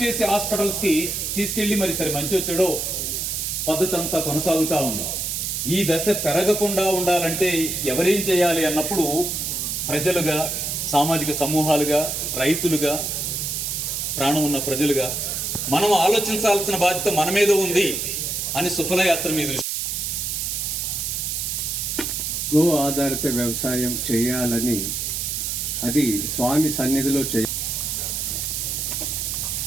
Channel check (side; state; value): right; noise; hiss, 2 dB below the sound